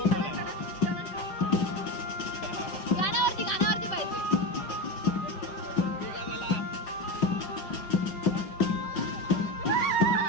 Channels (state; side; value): late; right; 5.4 ms